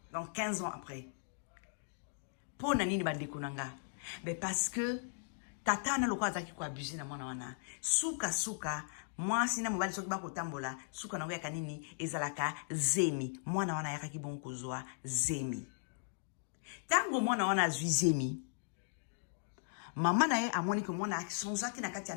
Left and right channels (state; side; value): silent; right; digital silence